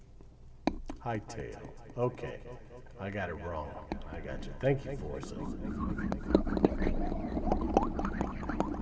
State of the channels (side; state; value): both; identical; correlation 1.00